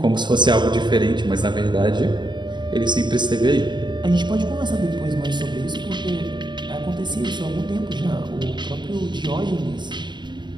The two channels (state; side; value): late; left; 0.22 ms